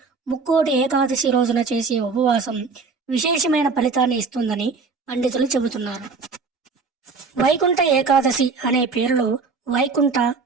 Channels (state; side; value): quieter; left; 4.6 dB